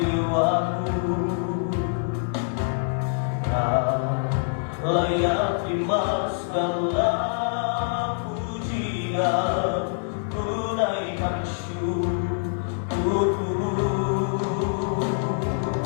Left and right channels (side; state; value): right; silent; 58 dB below the other